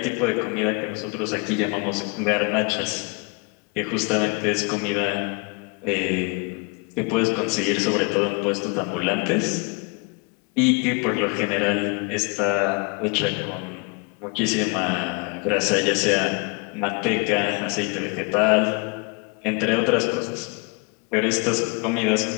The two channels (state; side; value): quieter; right; 31.6 dB